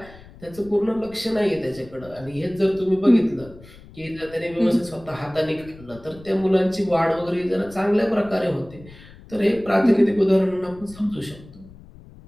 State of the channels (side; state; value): left; noise; rumble, 20 dB below the sound